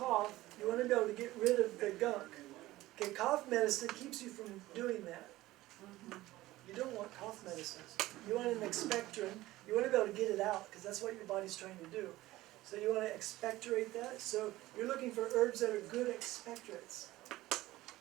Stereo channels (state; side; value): quieter; left; 17.2 dB